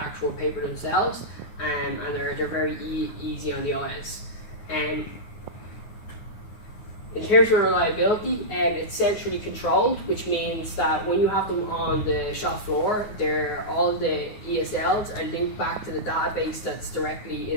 paper themselves, and they're very easy on the eyes. In terms of reliability, it's centrally controlled, which means that when you have them on the shop floor, all the ESLs are linked back to the database that's directly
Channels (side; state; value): right; late; 9.4 ms